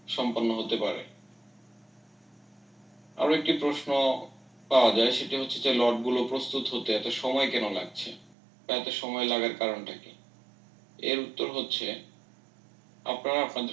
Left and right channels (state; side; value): drops out; left; at 8.3 s